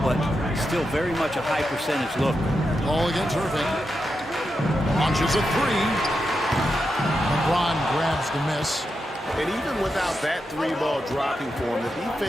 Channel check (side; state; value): both; normal; correlation 0.87